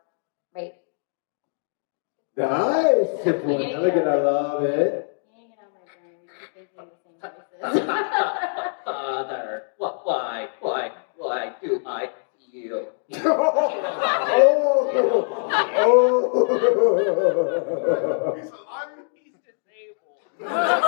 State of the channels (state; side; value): silent; right; digital silence